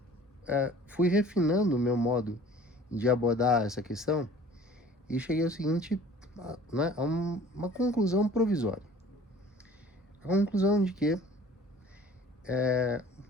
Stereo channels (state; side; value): normal; both; correlation 0.48